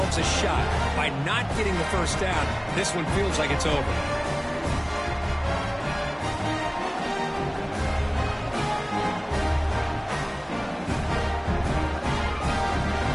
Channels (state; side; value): identical; both; correlation 1.00